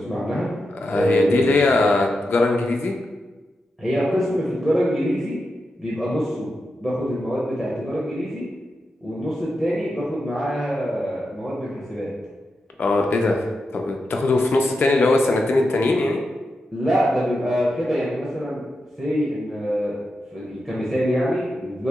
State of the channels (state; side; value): normal; both; correlation 0.88